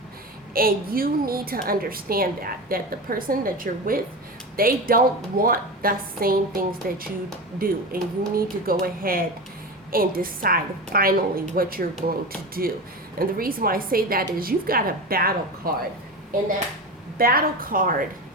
and you need to understand that the person that you're with, they don't want the same things that you do, and you need to go ahead and decide finally what you're going to do. And the reason why I say that is you've got a battle card, and that battle card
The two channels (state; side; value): normal; both; correlation 0.25